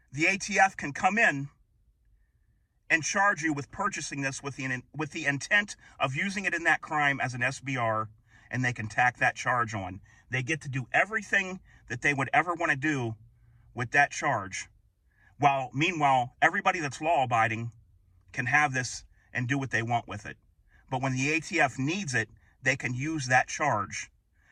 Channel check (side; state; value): both; identical; correlation 1.00